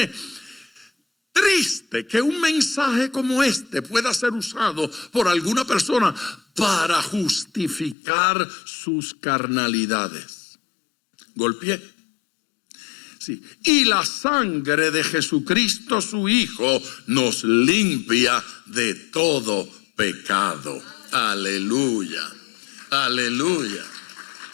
Triste que un mensaje como este pueda ser usado por alguna persona para justificar sus carnalidades. Golpeé. Sí. Y la sangre de Jesucristo su Hijo nos limpia de todo pecado. Aleluya, aleluya.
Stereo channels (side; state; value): right; drops out; at 8.0 s